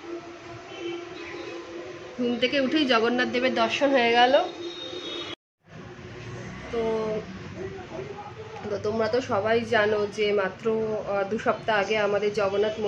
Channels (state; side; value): identical; both; correlation 1.00